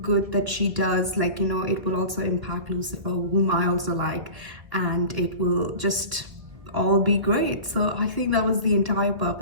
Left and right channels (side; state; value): left; late; 1.4 ms